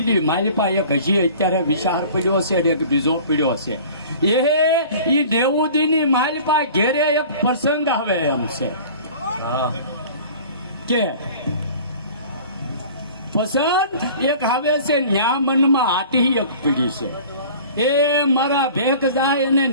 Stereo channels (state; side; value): inverted; both; correlation -0.44